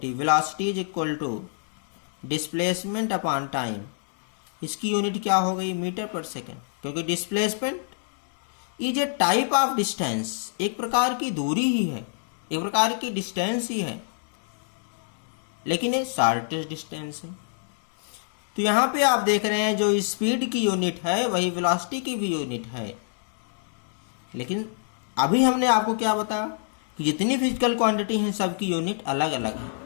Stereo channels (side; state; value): right; silent; digital silence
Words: velocity is equal to displacement upon time, इसकी यूनिट क्या हो गई? मीटर पर सेकेंड, क्योंकि displacement is a type of distance, एक प्रकार की दूरी ही है, एक प्रकार की डिस्टेंस ही है, लेकिन ये शॉर्टेस्ट डिस्टेंस है। तो यहाँ पे आप देख रहे हैं जो स्पीड की यूनिट है वही वेलोसिटी की भी यूनिट है, लेकिन अभी हमने आपको क्या बताया कि जितनी फिजिकल क्वांटिटी हैं सबकी यूनिट अलग अलग है,